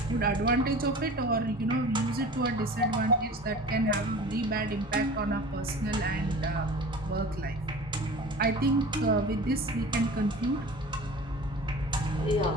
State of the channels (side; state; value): both; normal; correlation 0.39